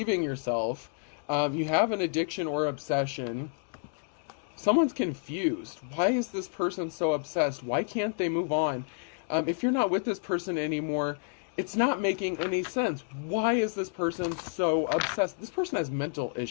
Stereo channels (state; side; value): quieter; right; 38.8 dB